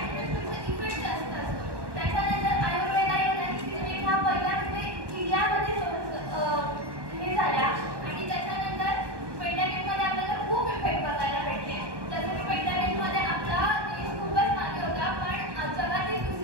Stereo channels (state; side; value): late; left; 1.2 ms